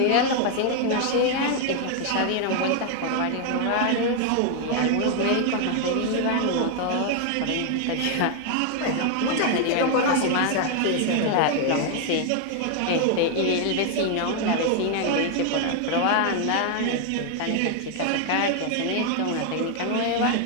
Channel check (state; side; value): different; both; correlation 0.00